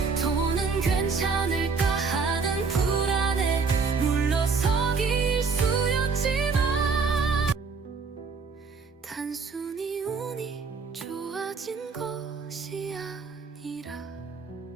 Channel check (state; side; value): quieter; left; 4.9 dB